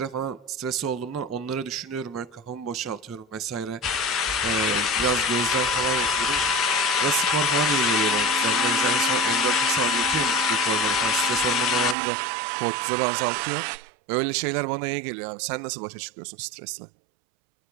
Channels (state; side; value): drops out; left; at 12.0 s